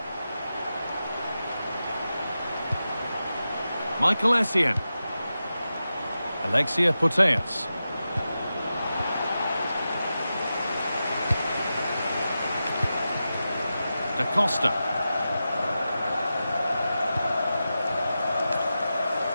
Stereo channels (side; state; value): both; inverted; correlation -0.91